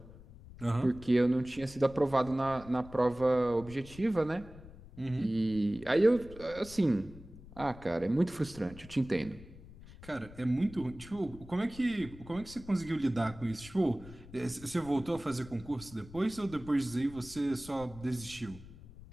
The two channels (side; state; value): left; noise; rumble, 18 dB below the sound